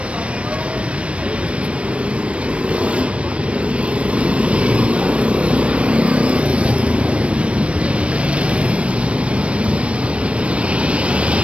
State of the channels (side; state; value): left; late; 0.061 ms